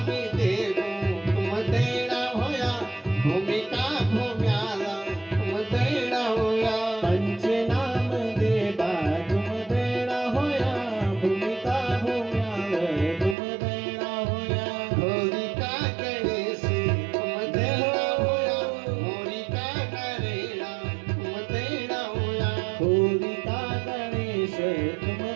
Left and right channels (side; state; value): left; drops out; at 13.4 s